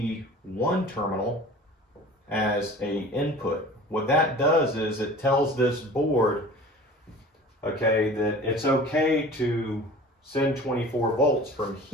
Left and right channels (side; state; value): both; normal; correlation 0.42